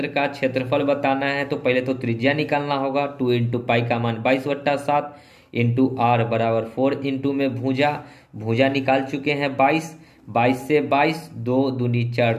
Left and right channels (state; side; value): identical; both; correlation 1.00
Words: का क्षेत्रफल बताना है तो पहले तो त्रिज्या निकालना होगा। 2 इंटू पाई का मान 22/7 इंटू आर बराबर 4 इंटू में भुजा, भुजा निकाल चुके हैं 22, 22 से 22 2 दूनी 4,